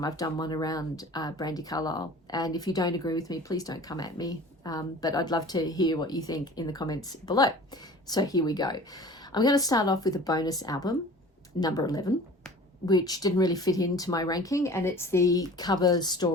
I've done one around Brandi Carlile. And if you don't agree with me, please don't come at me. But I'd love to hear what you think in the comments below. So here we go. I'm going to start off with a bonus album, number 11, which didn't really fit into my ranking, and it's the Cover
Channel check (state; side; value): normal; both; correlation 0.43